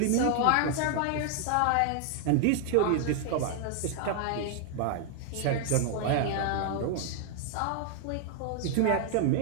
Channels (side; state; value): both; different; correlation 0.00